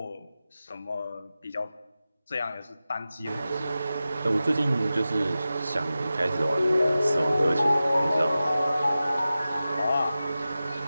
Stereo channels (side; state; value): both; inverted; correlation -0.94